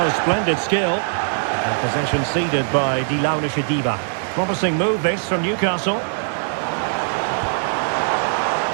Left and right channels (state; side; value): silent; left; 59 dB below the other